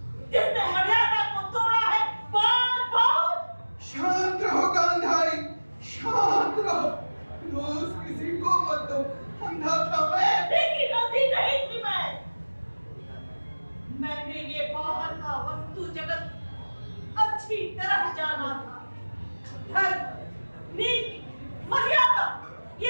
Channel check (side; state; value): both; inverted; correlation -1.00